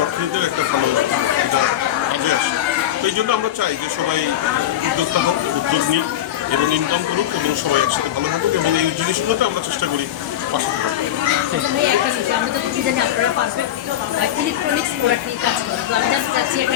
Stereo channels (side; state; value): right; quieter; 11.9 dB